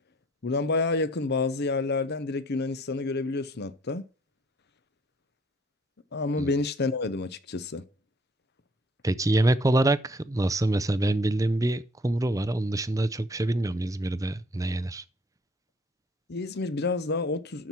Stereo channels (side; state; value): both; normal; correlation 0.59